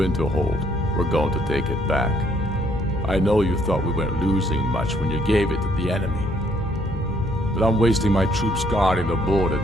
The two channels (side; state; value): both; normal; correlation 0.67